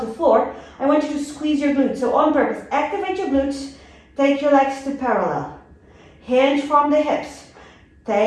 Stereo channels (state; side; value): identical; both; correlation 1.00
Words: floor, I want you to squeeze your glutes. So on purpose, activate your glutes, take your legs to parallel. Hinge from the hips.